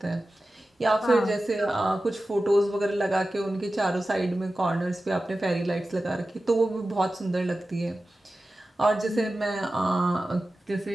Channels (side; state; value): both; normal; correlation 0.94